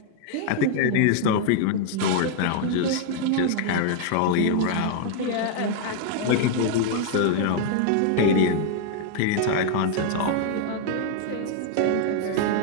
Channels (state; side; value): different; both; correlation 0.00